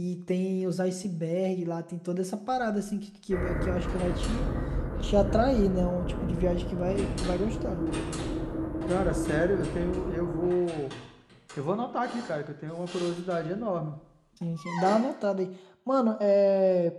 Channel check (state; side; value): identical; both; correlation 1.00